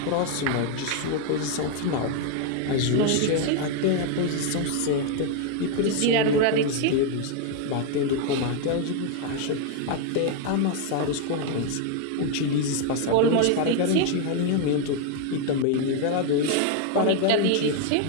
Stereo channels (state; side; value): different; both; correlation 0.01